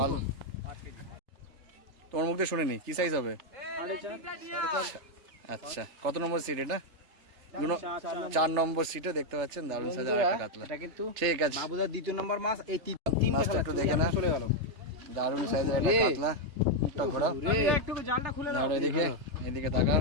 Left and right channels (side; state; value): left; late; 3.3 ms